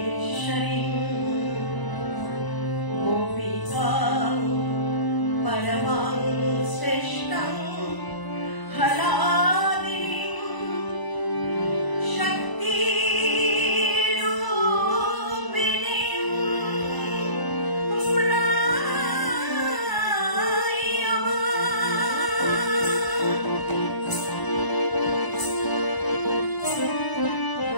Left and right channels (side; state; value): right; late; 1.0 ms